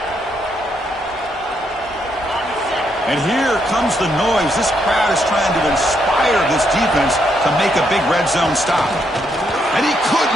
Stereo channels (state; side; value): normal; both; correlation 0.76